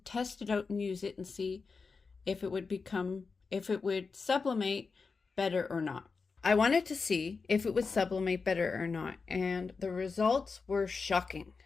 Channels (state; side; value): quieter; right; 4.7 dB